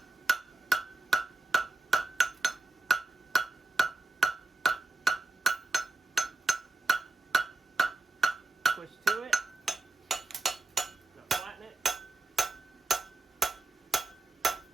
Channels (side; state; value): left; quieter; 3.3 dB